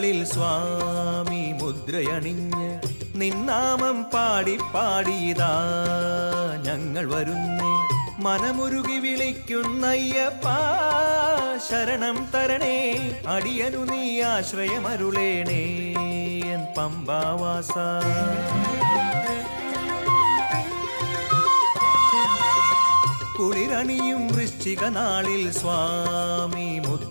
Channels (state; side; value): inverted; both; correlation -1.00